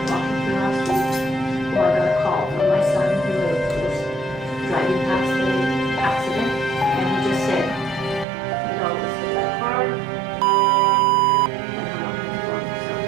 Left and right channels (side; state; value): left; drops out; at 8.2 s